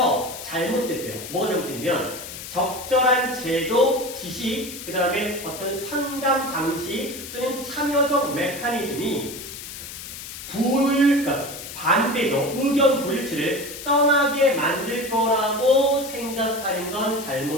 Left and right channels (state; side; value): noise; left; hiss, 11 dB below the sound